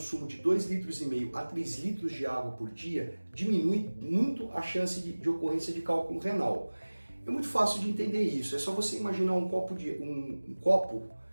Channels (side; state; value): both; inverted; correlation -1.00